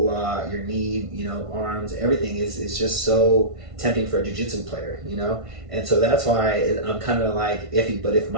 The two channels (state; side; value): late; left; 1.5 ms